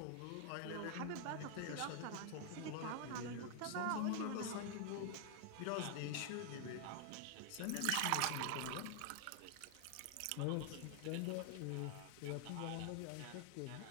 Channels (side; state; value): both; different; correlation 0.00